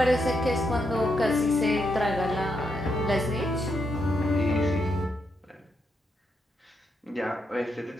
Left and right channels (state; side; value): normal; both; correlation 0.81